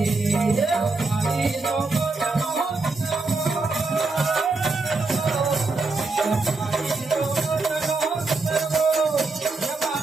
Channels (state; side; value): quieter; left; 3.7 dB